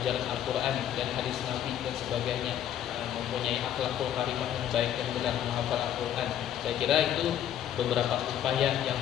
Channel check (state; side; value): quieter; right; 10.5 dB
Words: Al-Quran dan hadis Nabi dan sebagainya, mempunyai akhlakul karimah yang baik dan benar, menghafal Al-Quran. Saya kira itu beberapa upaya yang